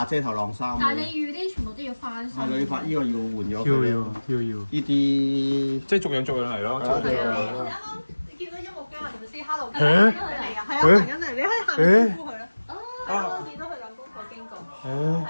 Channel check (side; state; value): both; inverted; correlation -1.00